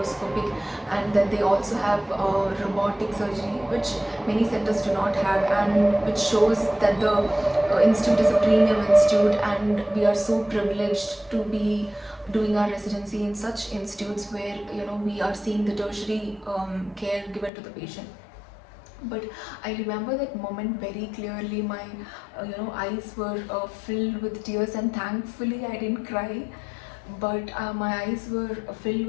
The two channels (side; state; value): right; drops out; at 17.5 s